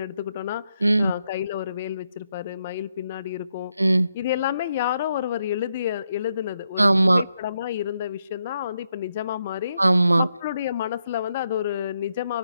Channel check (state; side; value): inverted; both; correlation -0.82